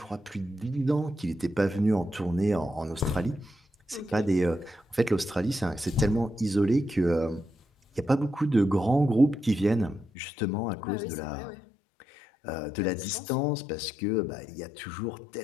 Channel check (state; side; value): drops out; right; at 10.1 s